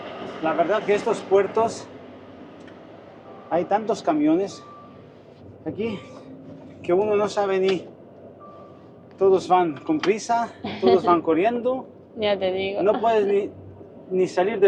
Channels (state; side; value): identical; both; correlation 1.00